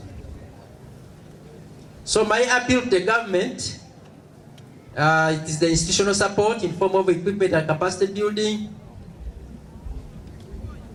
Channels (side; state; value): both; identical; correlation 1.00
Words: So my appeal to the government, it is the institutional support in form of equipment and capacity building,